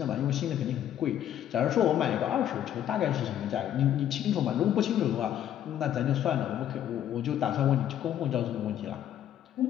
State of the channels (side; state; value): right; quieter; 10.9 dB